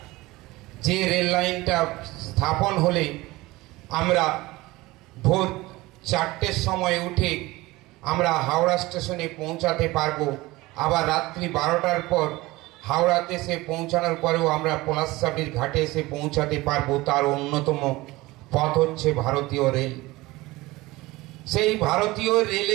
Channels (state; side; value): quieter; left; 20.1 dB